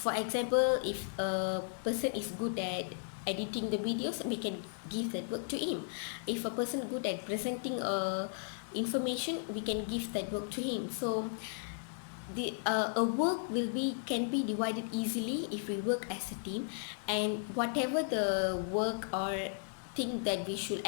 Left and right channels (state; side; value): silent; right; digital silence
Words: example, if a person is good at editing the videos, we can give that work to him. If a person good at presenting information, we can give that work to him. So the a work will be can be divided easily if we work as a team, and whatever the work or thing that we should